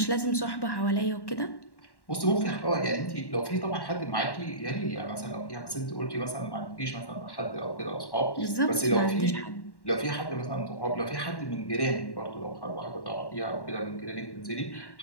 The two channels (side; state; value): right; late; 1.1 ms